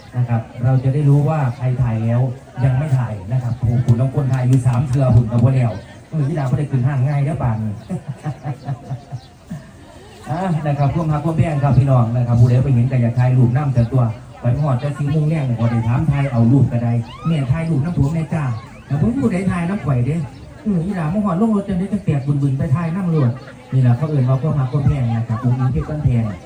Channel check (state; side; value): identical; both; correlation 1.00